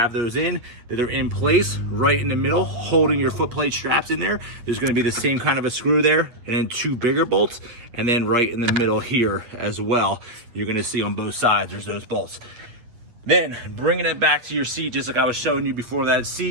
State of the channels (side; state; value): left; late; 8.7 ms